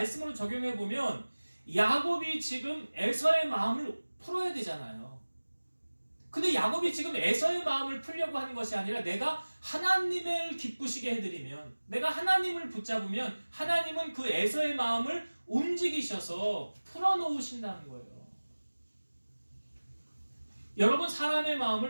적용해 보면 야곱이 지금 에서의 마음을 풀어야 되잖아요. 근데 야곱이 지금 에서의 마음을 풀려고 하는 것이 아니라 내가 하나님을 기쁘시게 해드리면 내가 하나님을 붙잡으면 하나님은 그 에서의 마음을 움직이셔서 풀어놓으신다는 거예요. 여러분 사람의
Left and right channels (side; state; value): both; inverted; correlation -1.00